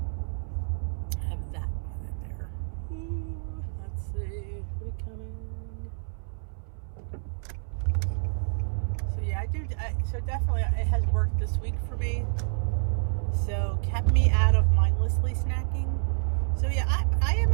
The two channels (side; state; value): left; silent; 59 dB below the other